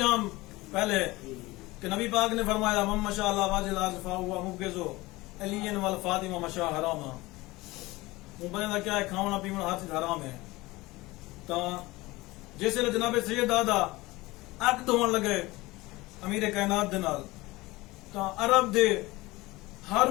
پہلے کہ نبی پاک نے فرمایا من مشى على وجه الارض فهو مبغض علی والفاطمہ مشى حراما. وہ بندے دا کیا ہے کھانا پینا ہر چیز حرام ہے. تو جس ویلے جناب سید دادا اک دھون لگے امیر کائنات دے نال تو عرب دے ہر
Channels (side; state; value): right; quieter; 20.6 dB